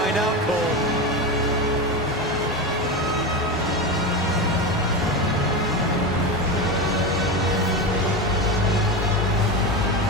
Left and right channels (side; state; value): both; normal; correlation 0.19